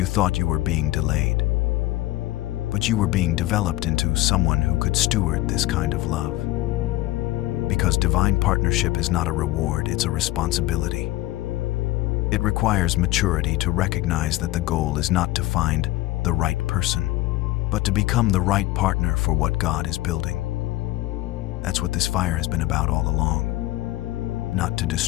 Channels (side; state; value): right; quieter; 17.1 dB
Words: thought you were being delayed, but you were being developed into someone who could steward this kind of love. Because divine partnership is not a reward, it's a responsibility. It requires maturity to recognize that the goal is not to find the right person, but to become the right partner for what God is building. That's what this fire has been about all along. Not to